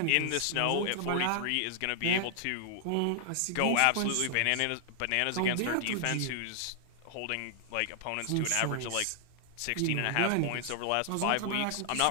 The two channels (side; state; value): both; different; correlation 0.00